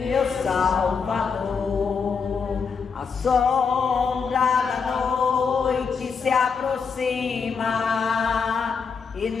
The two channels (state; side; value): quieter; right; 5.7 dB